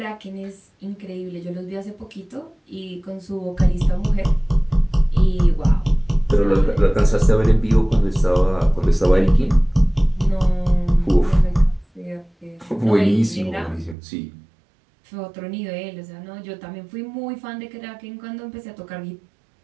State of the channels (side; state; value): left; drops out; at 14.0 s